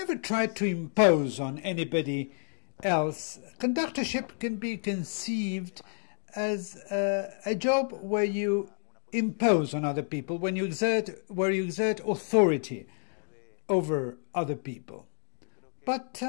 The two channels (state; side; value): silent; right; 58 dB below the other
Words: tried to impose on anybody else. Conductorship can be conceived as a job where you impose on other people, where you exert authority over other people. But